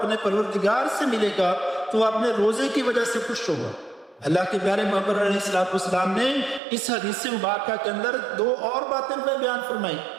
پروردگار سے ملے گا تو وہ اپنے روزے کی وجہ سے خوش ہوگا۔ اللہ کے پیارے محمد علیہ السلام نے اس حدیث مبارکہ کے اندر دو اور باتیں بیان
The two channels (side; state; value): left; drops out; at 6.6 s